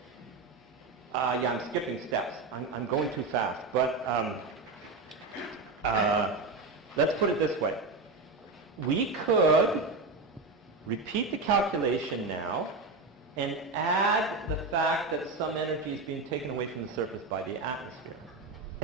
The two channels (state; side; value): quieter; left; 3.7 dB